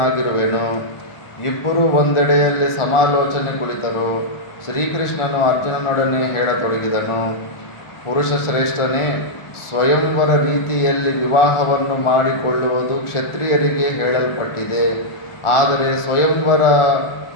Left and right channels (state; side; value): late; right; 1.4 ms